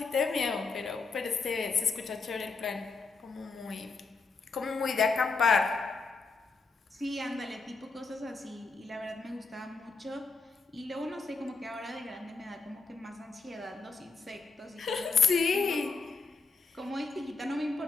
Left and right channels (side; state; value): right; quieter; 4.2 dB